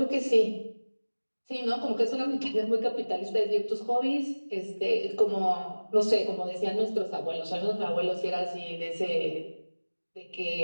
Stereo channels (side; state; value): both; inverted; correlation -1.00